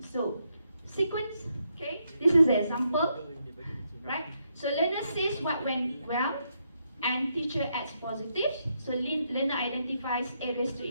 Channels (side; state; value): both; inverted; correlation -0.79